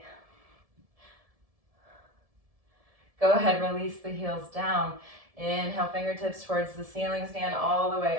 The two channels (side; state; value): left; late; 1.7 ms